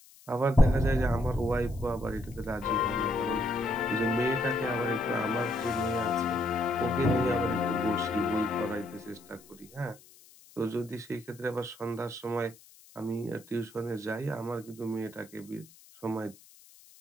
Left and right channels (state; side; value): noise; left; hiss, 24 dB below the sound